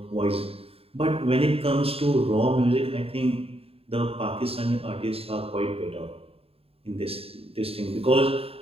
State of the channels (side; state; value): left; late; 0.28 ms